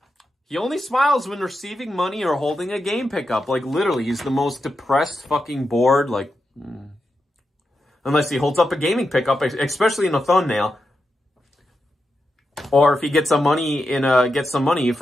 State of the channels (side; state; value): both; normal; correlation 0.88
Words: He only smiles when receiving money or holding a game pickup. Like, literally, he's the most depressed, fucking bored, like... Unless he holds up a gaming pickup, especially in a thumbnail. Or if he gets some money